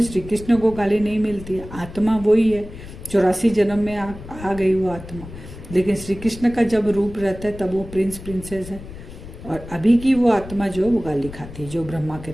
श्री कृष्ण को गाली नहीं मिलती है, आत्मा वही है, 84 जन्म में आ गई वो आत्मा। लेकिन श्री कृष्ण का जब रूप रहता है तब वो प्रिंस प्रिंसेस है, और अभी की वो आत्मा जो वो गाली खाती है, जो ब्रह्मा के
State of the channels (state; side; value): noise; left; rumble, 14 dB below the sound